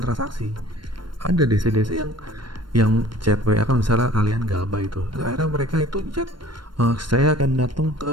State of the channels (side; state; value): left; late; 0.72 ms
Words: transaksi. Ada DC-DC yang yang chat WA kan misalnya kalian galbay itu, akhirnya mereka itu chat, saya akan datang